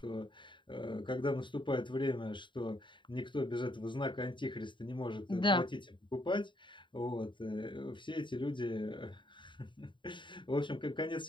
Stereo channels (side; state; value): right; late; 0.23 ms